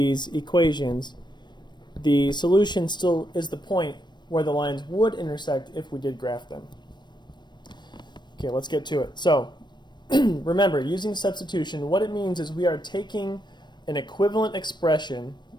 equations, the solution still is the point where the lines would intersect if we did graph them. Okay, let's get to it. So remember, using substitution, what it means is we are taking an equivalent expression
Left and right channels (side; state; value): right; late; 0.22 ms